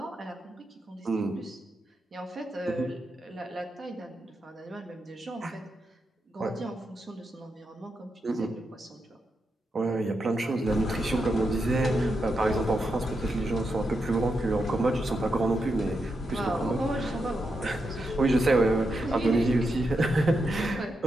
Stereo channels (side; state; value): both; normal; correlation 0.85